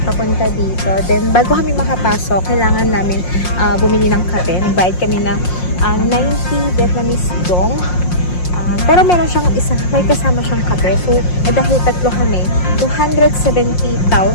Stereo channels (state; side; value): late; right; 5.6 ms